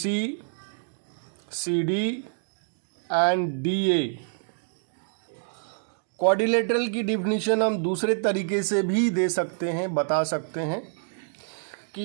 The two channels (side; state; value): left; silent; digital silence